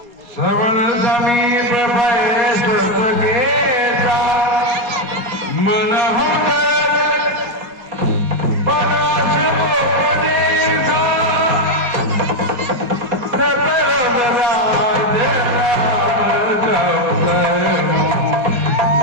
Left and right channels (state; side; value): late; left; 4.2 ms